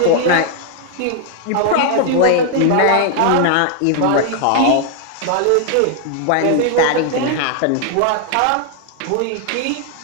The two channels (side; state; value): both; different; correlation 0.00